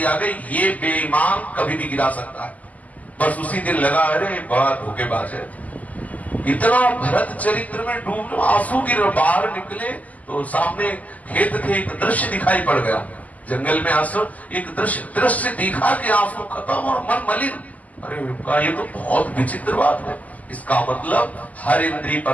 आ गई। ये बेईमान कभी भी गिरा सकता है। बस उसी दिन लगा, अरे बड़ा धोखेबाज है। इतना भरत चरित्र में डूब, आंसू गिर, बाहर निकले तो सामने खेत थे, एक दृश्य दिखाई पड़ गया। जंगल में आंसू, एक दृश्य दिखा कि आंसू खत्म और मन मलिन। अरे ये तो बहुत विचित्र बात है। इसका मतलब हर इंद्रिय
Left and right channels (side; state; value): right; late; 0.076 ms